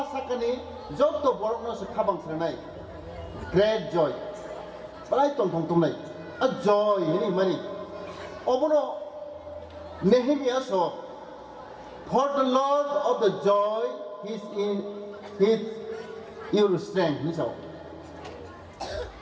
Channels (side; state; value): both; identical; correlation 1.00